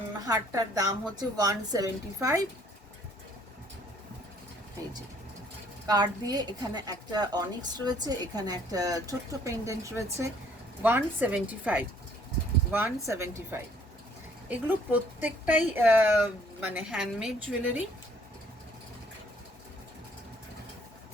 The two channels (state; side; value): normal; both; correlation 0.61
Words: হারটার দাম হচ্ছে 175। এই যে কার্ড দিয়ে এখানে একটা অনিক্স রয়েছে, এখানে একটা ছোট্ট পেন্ডেন্ট রয়েছে। 175। এগুলো প্রত্যেকটাই মানে হ্যান্ডমেড জুয়েলারি।